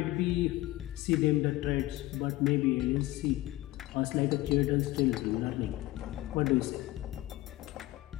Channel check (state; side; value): quieter; right; 17.9 dB